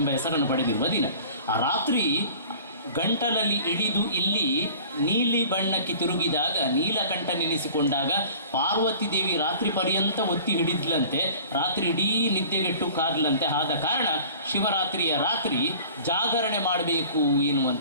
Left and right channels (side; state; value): both; inverted; correlation -0.45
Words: ಹೆಸರನ್ನು ಪಡೆದಿರುವ ದಿನ. ಆ ರಾತ್ರಿ ಗಂಟಲಲ್ಲಿ ಇಳಿದು ಇಲ್ಲಿ ನೀಲಿ ಬಣ್ಣಕ್ಕೆ ತಿರುಗಿದಾಗ, ನೀಲಕಂಠ ನೆನೆಸಿಕೊಂಡಾಗ ಪಾರ್ವತಿ ದೇವಿ ರಾತ್ರಿ ಪರ್ಯಂತ ಒತ್ತಿ ಹಿಡಿದ್ಲಂತೆ, ರಾತ್ರಿ ಇಡೀ ನಿದ್ದೆಗೆಟ್ಟು ಕಾದ್ಲಂತೆ. ಆದ ಕಾರಣ ಶಿವರಾತ್ರಿಯ ರಾತ್ರಿ ಜಾಗರಣೆ ಮಾಡಬೇಕು